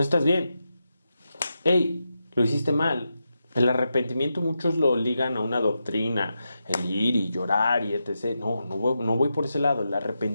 estás bien. Hey, lo hiciste mal. El arrepentimiento muchos lo ligan a una doctrina, el ir y llorar y etc. No voy por ese lado. El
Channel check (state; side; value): inverted; both; correlation -0.88